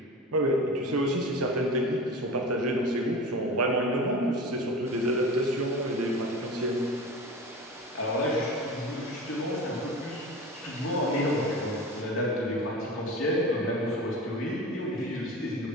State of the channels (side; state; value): both; normal; correlation 0.32